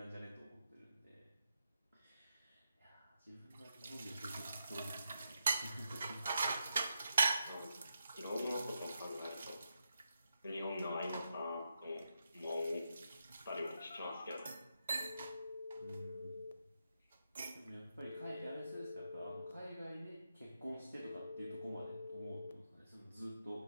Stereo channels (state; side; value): inverted; both; correlation -0.85